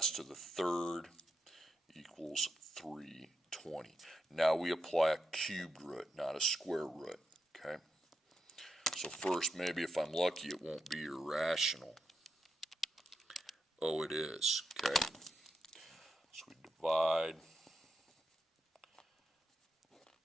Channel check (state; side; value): normal; both; correlation 0.84